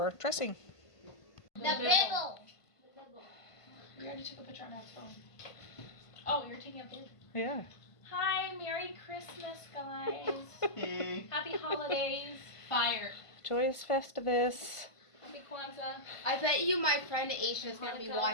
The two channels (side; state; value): right; late; 1.5 ms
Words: dressing. The bibble. We already took a picture on our phone. Oh, you're taking a picture? Yeah. Hi, Merry Christmas, guys. Happy holidays. Fire. Joyous Festivus. Happy Kwanzaa. I bet you my friend Aisha is going to be